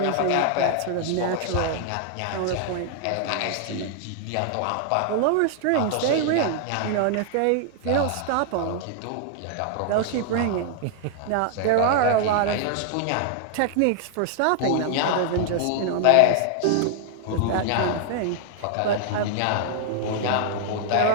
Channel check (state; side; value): different; both; correlation 0.00